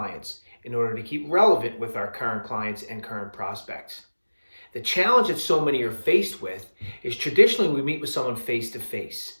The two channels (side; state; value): both; inverted; correlation -1.00